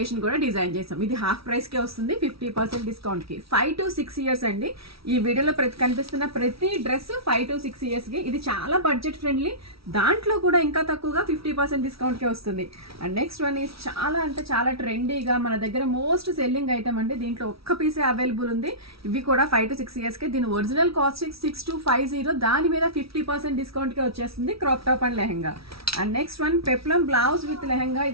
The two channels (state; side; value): late; left; 0.76 ms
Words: కూడా డిజైన్ చేసాం. ఇది హాఫ్ ప్రైస్కే వస్తుంది 50% డిస్కౌంట్కి. 5 to 6 ఇయర్స్ అండి. ఈ వీడియోలో కనిపిస్తున్న ప్రతి డ్రెస్ 5 to 6 ఇయర్స్కి. ఇది చాలా బడ్జెట్ ఫ్రెండ్లీ, దాంట్లో కూడా ఇంకా తక్కువగా 50% డిస్కౌంట్కే వస్తుంది. అండ్ నెక్స్ట్ వన్ ఈజ్ చాలా అంటే చాలా ట్రెండీగా మన దగ్గర మోస్ట్ సెల్లింగ్ ఐటమ్ అండి. దీంట్లో ఒక్క పీసే అవైలబుల్ ఉంది. ఇవి కూడా 5 to 6 ఇయర్స్కి. దీని ఒరిజినల్ కాస్ట్ 6250, దాని మీద 50% డిస్కౌంట్కే వచ్చేస్తుంది. Crop top and lehenga. And next one peplum blouse with lehenga.